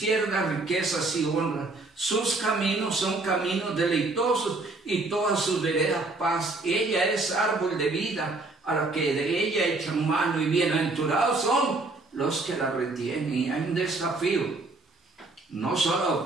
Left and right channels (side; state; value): left; quieter; 3.3 dB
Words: riquezas y honra. Sus caminos son caminos deleitosos, y todas sus veredas paz. Ella es árbol de vida, a la que de ella echan mano, y bienaventurados son los que la retienen. Y hay un desafío, no solo a